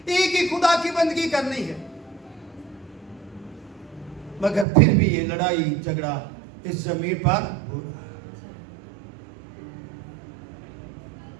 एक ही खुदा की बंदगी करनी है। मगर फिर भी ये लड़ाई झगड़ा इस जमीन पर हो रहा है।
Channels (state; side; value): drops out; left; at 4.7 s